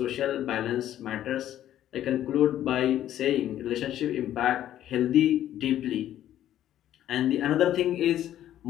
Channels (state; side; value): quieter; right; 12.0 dB